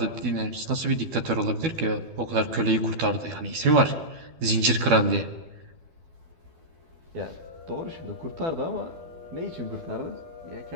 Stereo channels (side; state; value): left; late; 12 ms